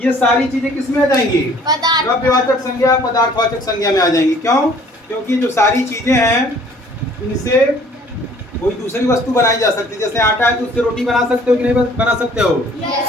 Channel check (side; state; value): both; normal; correlation 0.55